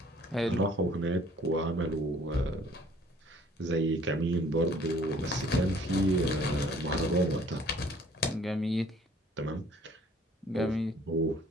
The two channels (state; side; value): normal; both; correlation 0.56